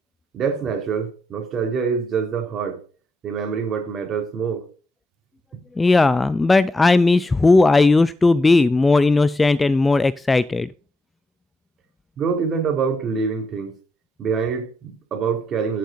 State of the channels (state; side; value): normal; both; correlation 0.84